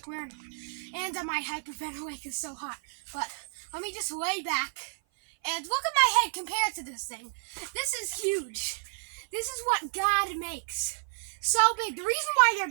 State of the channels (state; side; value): silent; left; 55 dB below the other